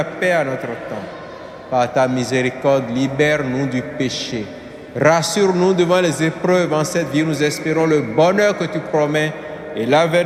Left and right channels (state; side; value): identical; both; correlation 1.00